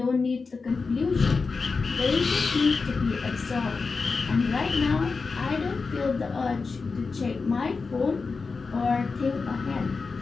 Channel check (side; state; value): right; quieter; 4.5 dB